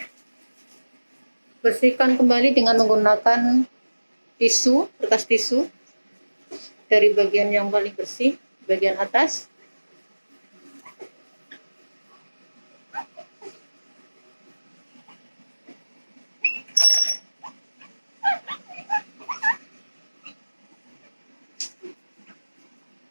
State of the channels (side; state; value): both; inverted; correlation -1.00